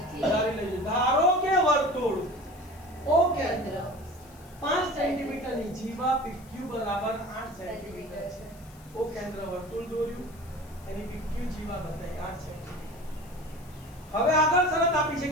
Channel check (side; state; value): left; noise; hiss, 25 dB below the sound